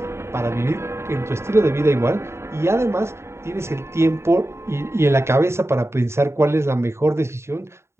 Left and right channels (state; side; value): late; left; 0.13 ms